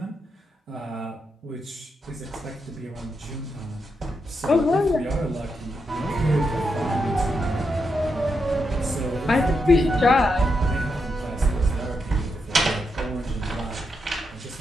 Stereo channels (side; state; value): both; normal; correlation 0.84